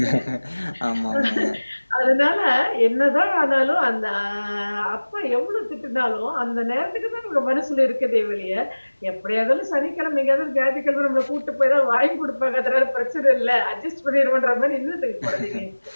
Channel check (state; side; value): inverted; both; correlation -1.00